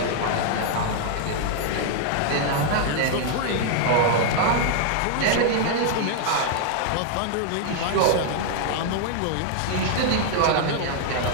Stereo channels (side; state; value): both; different; correlation 0.00